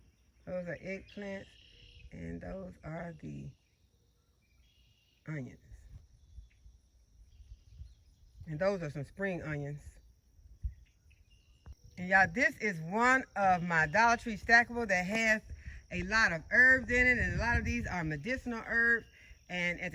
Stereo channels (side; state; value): both; identical; correlation 1.00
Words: Those are eggplants, and those are the onions. And those are some spring onions. And y'all, this is one of my Dollar Tree stackable that has a lot of herbs in it, and a lot of these are medicinal herbs. And at